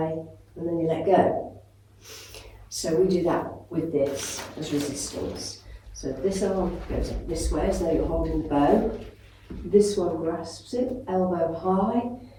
and then you let go. So we do that with this as resistance. So this arm goes up this way as though you're holding the bow. This one grasps it, elbow high,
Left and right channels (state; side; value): identical; both; correlation 1.00